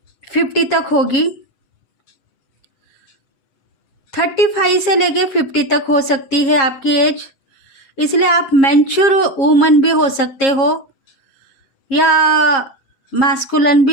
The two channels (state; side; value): late; right; 7.4 ms